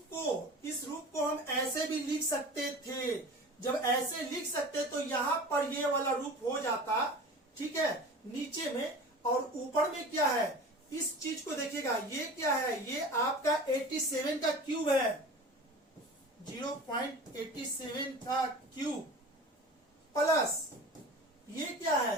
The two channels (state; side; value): normal; both; correlation 0.37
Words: को हम ऐसे भी लिख सकते थे। जब ऐसे लिख सकते तो यहां पर ये वाला रूप हो जाता, ठीक है, नीचे में, और ऊपर में क्या है, इस चीज को देखिएगा, ये क्या है, ये आपका 87 का क्यूब है, 0.87 का क्यूब, प्लस ये क्या